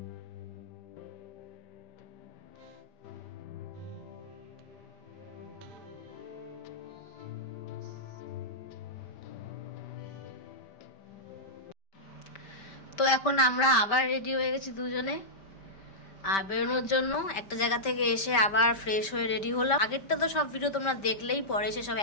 তো এখন আমরা আবার রেডি হয়ে গেছি দুজনে আর বেরোনোর জন্য। একটা জায়গা থেকে এসে আবার ফ্রেশ হয়ে রেডি হলাম। আগেরটা তো সব ভিডিও তোমরা দেখলেই, পরে এসে সব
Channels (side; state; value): right; late; 5.1 ms